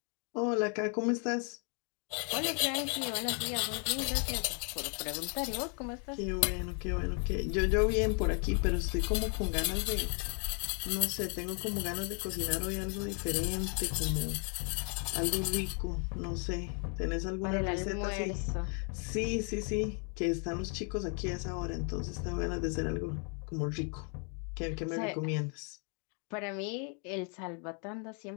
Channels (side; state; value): right; quieter; 39.8 dB